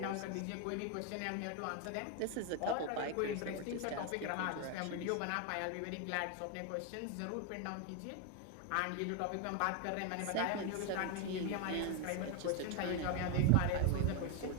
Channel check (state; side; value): different; both; correlation 0.01